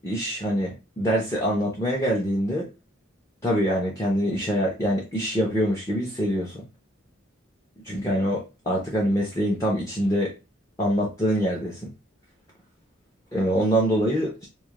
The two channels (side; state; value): both; normal; correlation 0.64